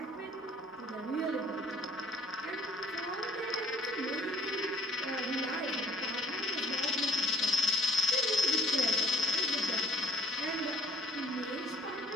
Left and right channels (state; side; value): normal; both; correlation 0.57